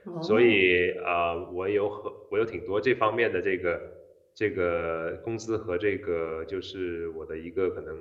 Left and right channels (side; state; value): both; identical; correlation 1.00